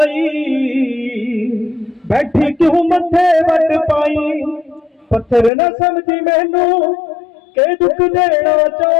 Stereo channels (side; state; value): right; drops out; at 5.5 s